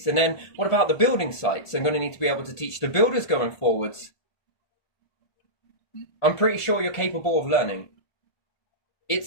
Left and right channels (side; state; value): right; late; 1.5 ms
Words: And then what about the building sites? I'm going to need to be able to teach the builders going forwards. I'm pretty sure you're capable of learning.